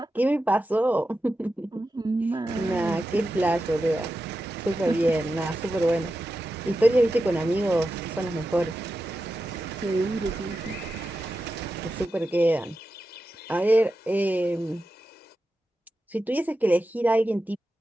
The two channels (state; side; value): normal; both; correlation 0.91